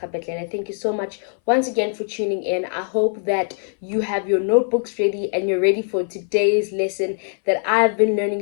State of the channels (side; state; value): right; silent; 61 dB below the other